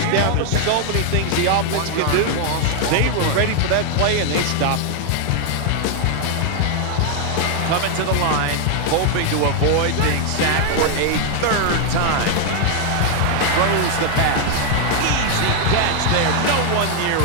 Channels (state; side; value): different; both; correlation 0.00